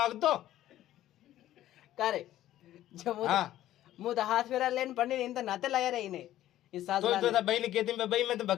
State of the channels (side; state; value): right; quieter; 13.4 dB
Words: करे जब हां मु तो हाथ फेरा लेन पढ़नी इन तो नाते लाया रही ने इस साथ तो बहन कहती मैं भाई मैं तो